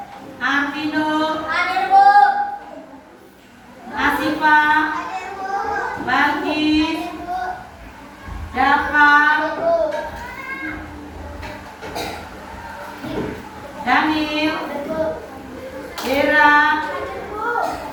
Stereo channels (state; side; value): identical; both; correlation 1.00